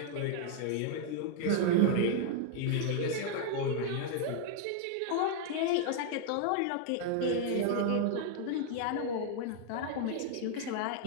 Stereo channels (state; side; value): different; both; correlation 0.00